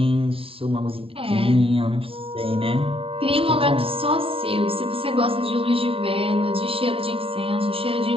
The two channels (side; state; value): left; late; 0.27 ms